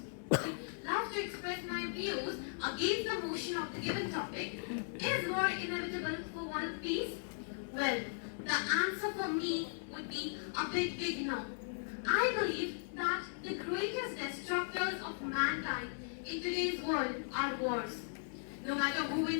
would love to express my views against the motion of the given topic. Is war inevitable for world peace? Well, the answer for me would be a big no. I believe that the greatest destructors of mankind in today's world are wars. No matter who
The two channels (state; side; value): silent; right; digital silence